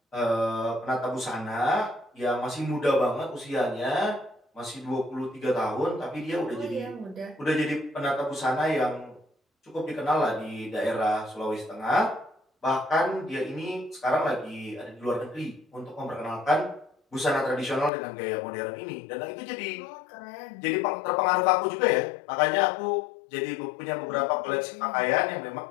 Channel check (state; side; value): drops out; right; at 17.9 s